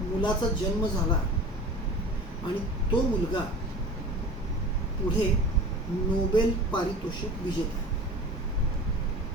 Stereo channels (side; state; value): both; normal; correlation 0.38